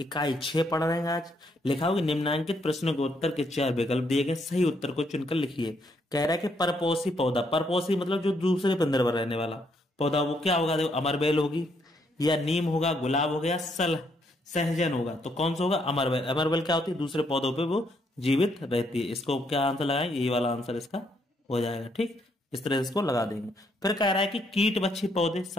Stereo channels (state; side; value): normal; both; correlation 0.73